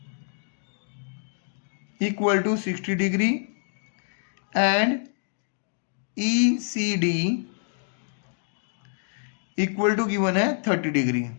equal to 60 degree and E C D equal to given है 30 डिग्री।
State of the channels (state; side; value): silent; right; digital silence